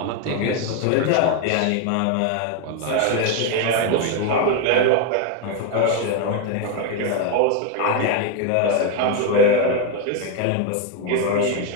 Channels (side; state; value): both; different; correlation 0.01